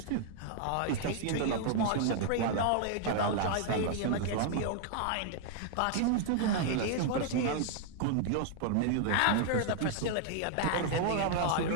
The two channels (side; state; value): both; different; correlation 0.00